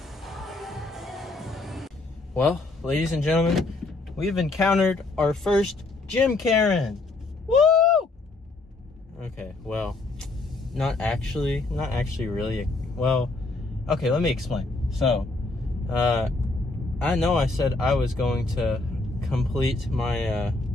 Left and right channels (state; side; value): quieter; right; 3.2 dB